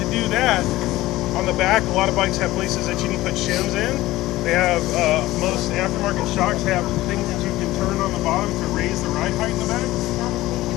do that, on the back, a lot of bikes have places that you can put shims in. They have, most aftermarket shocks have things that you can turn on the bottom to raise the ride height in the back.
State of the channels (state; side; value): quieter; right; 17.1 dB